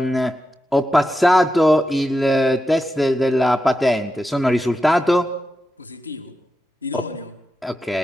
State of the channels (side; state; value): both; normal; correlation 0.89